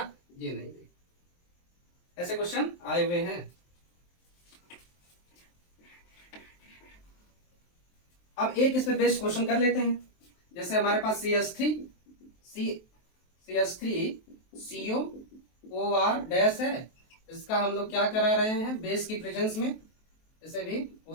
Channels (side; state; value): right; late; 23 ms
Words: ये नहीं देगा। ऐसे क्वेश्चन आए हुए हैं। अब एक इस पे बेस्ड क्वेश्चन कर लेते हैं। जैसे हमारे पास CH3COOR' है, इसका हम लोग क्या करा रहे हैं, बेस की प्रेजेंस में इसे भी